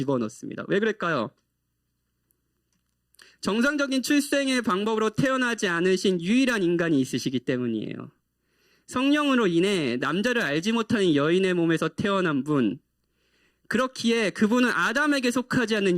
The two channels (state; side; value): identical; both; correlation 1.00